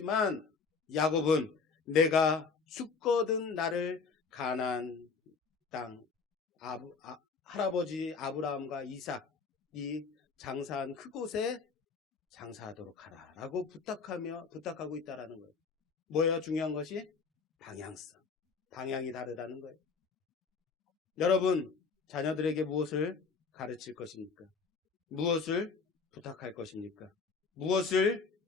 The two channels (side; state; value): right; quieter; 5.0 dB